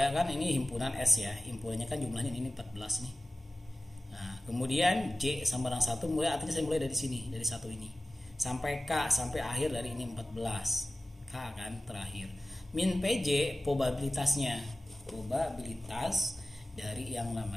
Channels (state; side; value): normal; both; correlation 0.96